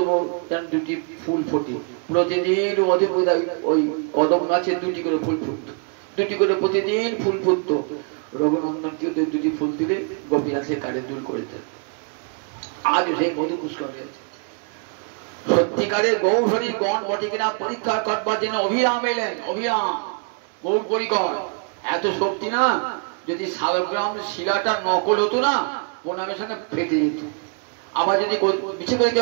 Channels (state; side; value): quieter; left; 38.4 dB